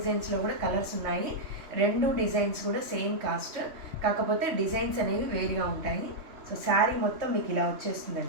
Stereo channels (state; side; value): late; left; 3.2 ms